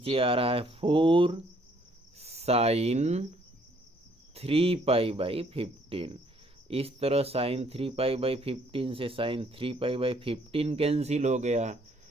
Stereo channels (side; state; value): both; normal; correlation 0.65